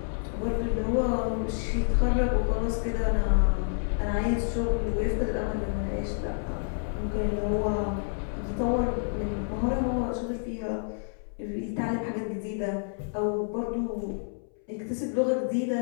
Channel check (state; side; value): silent; right; 59 dB below the other